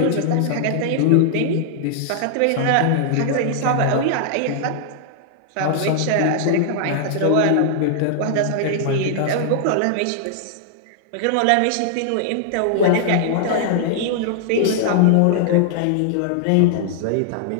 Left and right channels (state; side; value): different; both; correlation -0.01